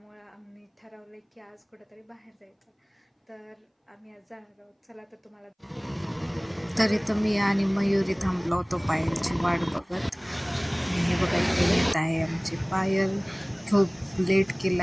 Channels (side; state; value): both; identical; correlation 1.00